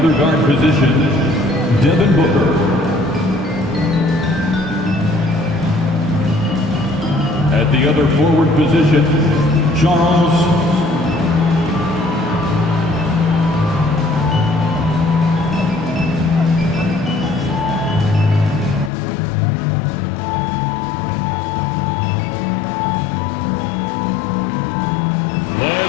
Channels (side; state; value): right; drops out; at 18.9 s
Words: guard position, Devin Booker. At the other forward position, Charles.